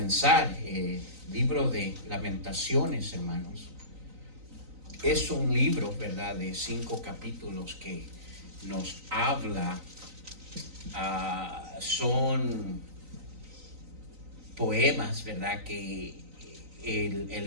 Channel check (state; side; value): late; left; 3.9 ms